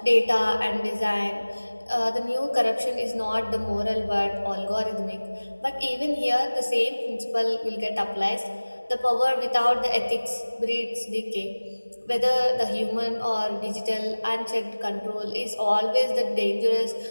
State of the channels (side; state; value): both; inverted; correlation -1.00